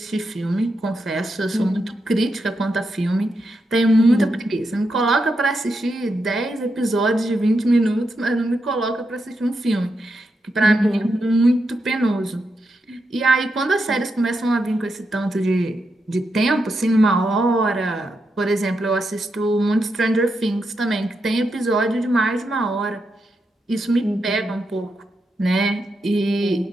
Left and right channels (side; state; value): both; normal; correlation 0.85